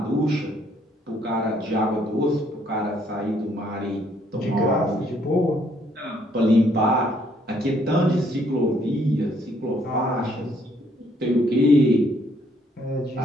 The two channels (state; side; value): normal; both; correlation 0.67